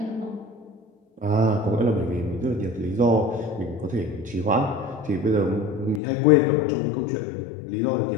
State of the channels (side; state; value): right; drops out; at 6.0 s